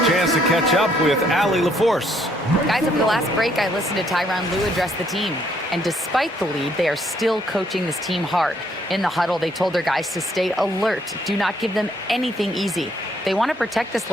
chance to catch up with Allie LaForce. Guys, over the last break, I listened to Tyronn Lue address the team. And despite the lead, they are still coaching this team hard. In the huddle, they told their guys to stay alert. Do not give them anything easy. They want to protect this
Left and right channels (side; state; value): both; normal; correlation 0.68